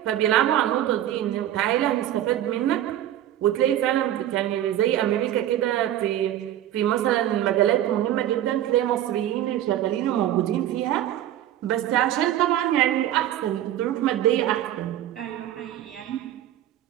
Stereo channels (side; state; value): left; quieter; 12.3 dB